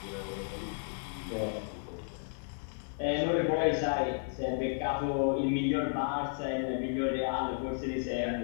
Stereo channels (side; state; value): right; silent; digital silence